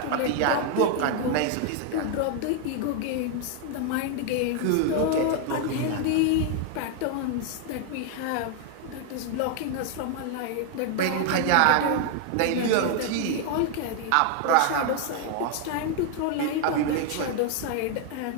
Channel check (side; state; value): both; different; correlation 0.00